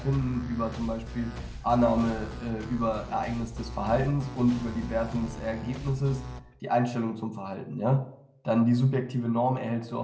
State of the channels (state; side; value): identical; both; correlation 1.00